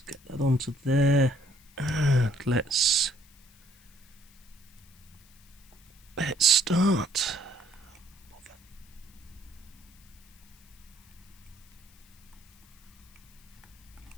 get that onto there, and let's start.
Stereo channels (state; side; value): noise; left; hiss, 27 dB below the sound